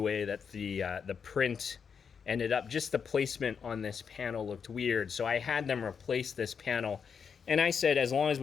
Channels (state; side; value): quieter; right; 6.5 dB